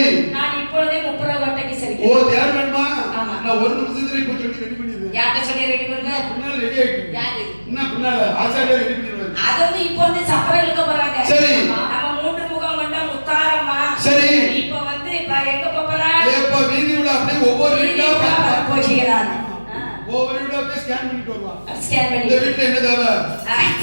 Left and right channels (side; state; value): both; inverted; correlation -1.00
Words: நான் இப்பொழுதே முப்புரகோட்டைக்கு சரி. ஓ தேர் வேணுமா? ஆமா. நான் ஒரு நிமிஷத்துல இப்ப சொல்லி ரெடி பண்ணிடுறேன். யார்ட்ட சொல்லி ரெடி பண்ணுங்க? பின்னால ரெடி ஆயிட்டு. யாரு? என்ன பின்னால ஆசாரியா ரெடி பண்ணிடுவாங்க. அது வந்து இப்போ வந்து சப்பரம் இழுக்க போறாங்க. சரி. நம்ம மூன்று முகம் கொண்ட முத்தாரம்மா. சரி. இப்போ வந்து எங்க போறா? ஏப்பா வீதி உள்ள அப்படியே ஒவ்வொரு வீட்டா போகிறாங்க. ஒவ்வொரு வீட்டா அப்படியே ஸ்கேன் பண்ணிட்டு வருவா. ஸ்கேன் பண்ணி. இந்த வீட்ல என்ன தேவை?